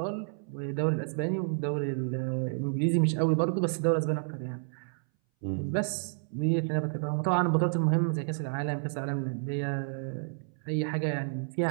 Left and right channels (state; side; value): silent; left; 58 dB below the other